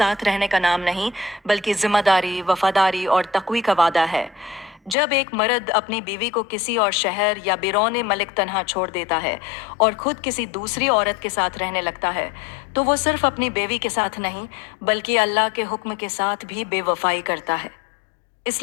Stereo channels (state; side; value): drops out; right; at 5.0 s